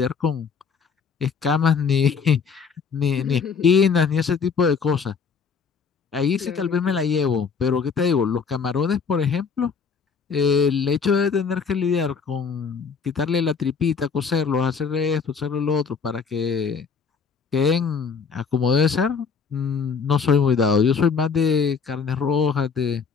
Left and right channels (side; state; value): right; quieter; 5.7 dB